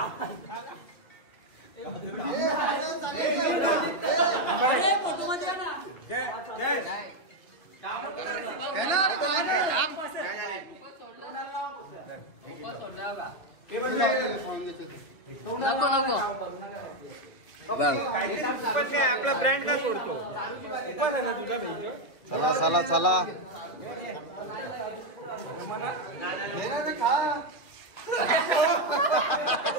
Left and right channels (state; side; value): late; right; 2.6 ms